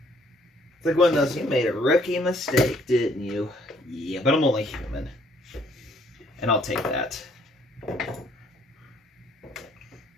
It's like one of those, you made a rookie mistake, didn't you? Yeah, but I'm only human. And I'll take that.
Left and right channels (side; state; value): both; normal; correlation 0.64